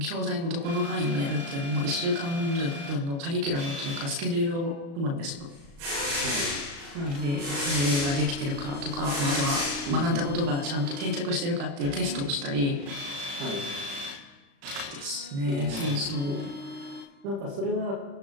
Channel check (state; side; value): late; left; 36 ms